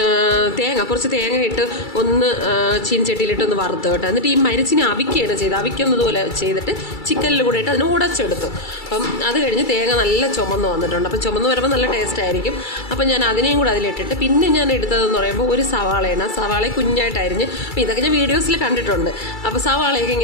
കുറച്ച് തേങ്ങ ഇട്ട് ഒന്ന് ചീനച്ചട്ടിയിലിട്ട് ഒന്ന് വറുത്ത് കേട്ടോ. എന്നിട്ട് ഈ മരിച്ചിനെ അവിക്കുകയാണ് ചെയ്തത്. അവിക്കുന്നതുപോലെ ചെയ്തിട്ട് ചിക്കനിൽ കൂടെ ഇട്ട് അതിന് ഉടച്ചെടുത്തു. അപ്പം അത് കഴിഞ്ഞ് തേങ്ങ നല്ല ചുമന്ന് വന്നിട്ടുണ്ട്. അപ്പം ചുമന്ന് വരുമ്പോൾ നല്ല ടേസ്റ്റ് ആയിരിക്കും. അപ്പം ഞാൻ അതിനെയും കൂടെ അതിലിട്ടിട്ട് പിന്നെ ഞാൻ എടുത്തതെന്ന് പറയുമ്പോൾ ഒരു സവാളയാണ്. സവാള കുഞ്ഞായിട്ടായിരിഞ്ഞ്. അപ്പോൾ ഇതൊക്കെ ഞാൻ വീഡിയോസിൽ കണ്ടിട്ടുണ്ട്. അപ്പോൾ സവാളയൊക്കെ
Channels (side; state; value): right; late; 2.3 ms